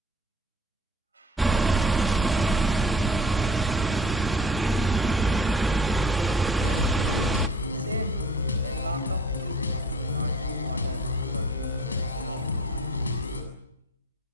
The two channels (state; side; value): normal; both; correlation 0.47